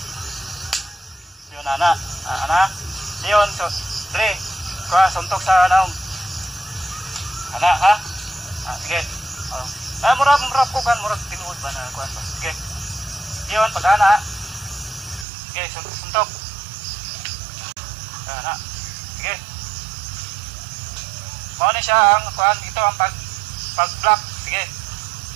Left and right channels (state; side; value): drops out; left; at 15.2 s